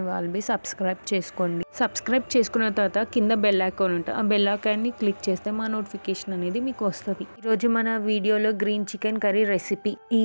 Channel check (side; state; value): both; inverted; correlation -1.00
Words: వాళ్ళు సబ్స్క్రైబ్ చేసుకోండి. సబ్స్క్రైబ్ చేసుకున్న తర్వాత కింద బెల్ ఐకాన్ ఉంటుంది. ఆ బెల్ ఐకాన్ని క్లిక్ చేస్తే మా నోటిఫికేషన్ అనేది మీకు వస్తుంది. ఈరోజు మన వీడియోలో green chicken curry recipe